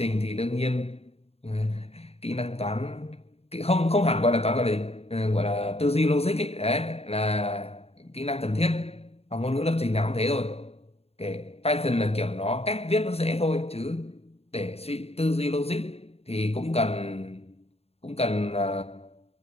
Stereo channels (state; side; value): late; right; 0.29 ms